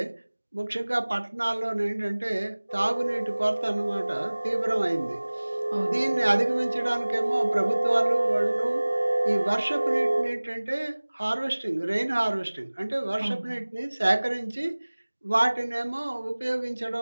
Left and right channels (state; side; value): inverted; both; correlation -1.00